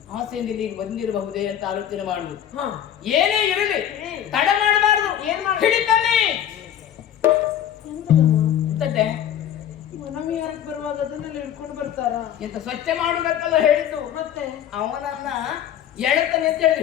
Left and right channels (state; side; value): quieter; right; 10.3 dB